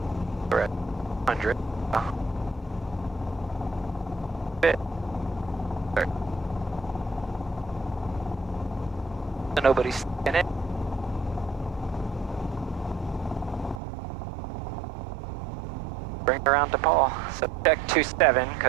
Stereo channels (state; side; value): drops out; left; at 13.8 s